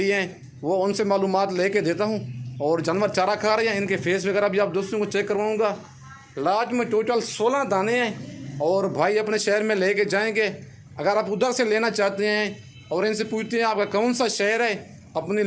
हैं, वो उनसे मालूमात लेके देता हूँ। और जानवर चारा खा रहे हैं, इनके फेस वगैरह भी आप दोस्तों को चेक करवाऊँगा। लाड में टोटल 16 दाने हैं और भाई अपने शहर में लेके जाएंगे। अगर आप उधर से लेना चाहते हैं और इनसे पूछते हैं आपका कौन सा शहर है, अपनी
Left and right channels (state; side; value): identical; both; correlation 1.00